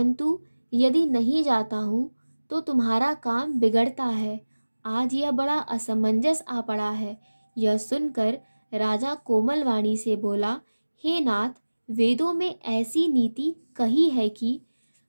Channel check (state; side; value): inverted; both; correlation -1.00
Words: यदि नहीं जाता हूँ तो तुम्हारा काम बिगड़ता है। आज यह बड़ा असमंजस आ पड़ा है। यह सुनकर राजा कोमल वाणी से बोला, हे नाथ, वेदों में ऐसी नीति कही है कि